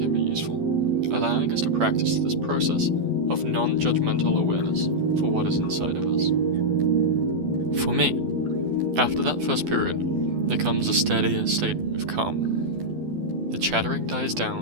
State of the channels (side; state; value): left; late; 12 ms